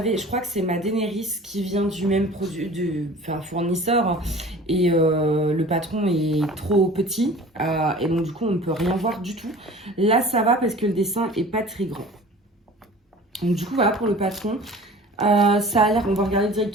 crois que c'est ma Daenerys qui vient du même fournisseur. Et le patron est trop petit. Et donc, du coup, on ne peut rien voir du tout. Là, ça va parce que le dessin est pas très grand. Donc, du coup, voilà pour le patron. Ça a l'air, on va regarder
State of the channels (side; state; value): both; normal; correlation 0.43